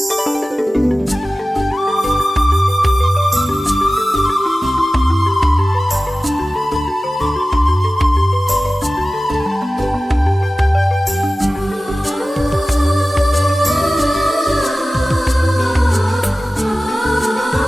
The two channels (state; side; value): normal; both; correlation 0.96